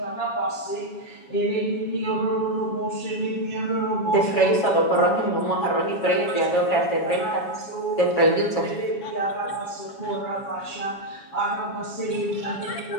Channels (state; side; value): late; right; 7.2 ms